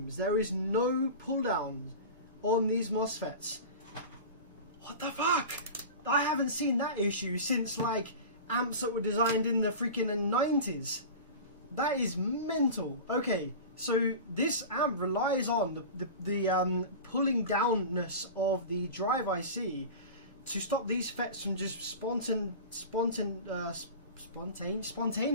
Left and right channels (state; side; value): inverted; both; correlation -0.32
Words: There is no pull down on these MOSFETs. What the fuck? I haven't seen that issue since like amps that were designed in the freaking 90s. That is mental. Okay, so this amp relies on the pulling downness of the drive IC to stop these FETs from just